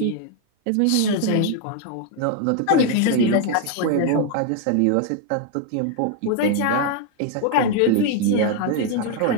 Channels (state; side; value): different; both; correlation 0.00